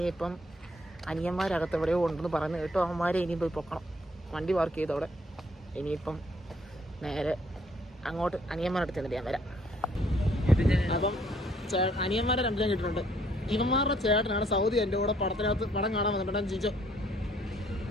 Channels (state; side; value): normal; both; correlation 0.65